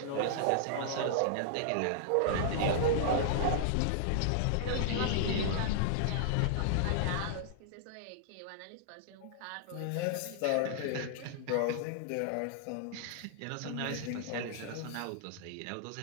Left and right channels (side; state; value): both; different; correlation -0.01